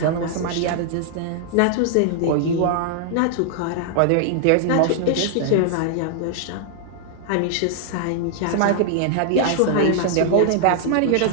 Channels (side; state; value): both; different; correlation -0.01